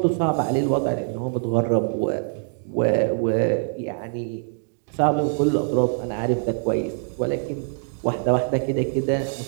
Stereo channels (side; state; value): left; silent; digital silence